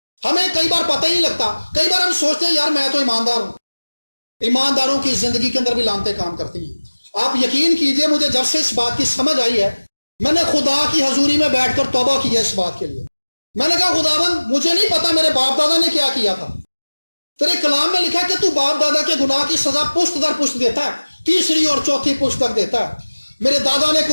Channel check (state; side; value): inverted; both; correlation -1.00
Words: ہمیں کئی بار پتہ ہی نہیں لگتا، کئی بار ہم سوچتے ہیں یار میں تو ایماندار ہوں، ایمانداروں کی زندگی کے اندر بھی لعنتیں کام کرتی ہیں۔ آپ یقین کیجئے مجھے جب سے اس بات کی سمجھ آئی ہے، میں نے خدا کی حضوری میں بیٹھ کر توبہ کی ہے اس بات کے لیے۔ میں نے کہا خداوند مجھے نہیں پتا میرے باپ دادا نے کیا کیا تھا، تیرے کلام میں لکھا کہ تو باپ دادا کے گناہ کی سزا پشت در پشت دیتا ہے، تیسری اور چوتھی پشت تک دیتا ہے۔ میرے دادا نے